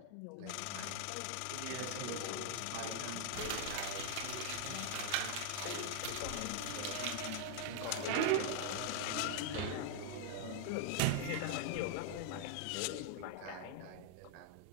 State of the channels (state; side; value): different; both; correlation 0.00